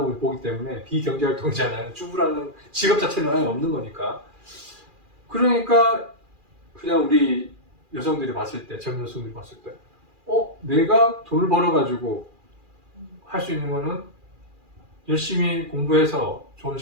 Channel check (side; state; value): left; late; 2.4 ms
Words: 보기 때문에 비경제 활동이잖아요. 주부라는 직업 자체는 아예 없는 거니까. 그러니까 그냥 우리 여성들이 봤을 때, 젊은 여성들이 봤을 때, 내가 돈을 벌어가지고 할 수 있는 거는 열심히 공부해서 좋은